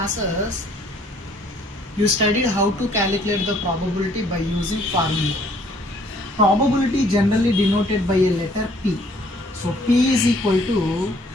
you studied how to calculate the probability by using formula. Probability generally denoted by a letter P. So P is equal to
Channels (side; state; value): both; normal; correlation 0.61